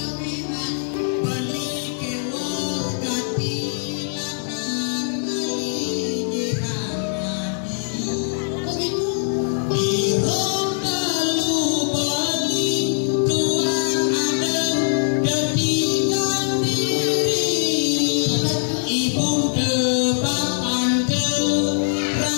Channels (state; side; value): silent; right; digital silence